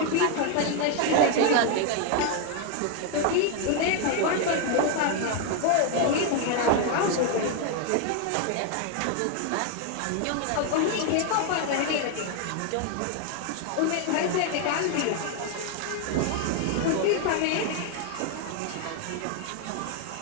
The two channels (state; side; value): different; both; correlation 0.01